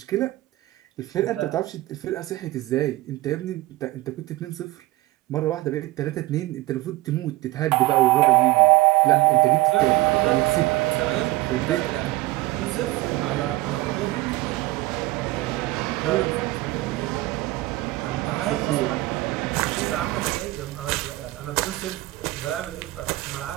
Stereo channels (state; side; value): quieter; left; 18.7 dB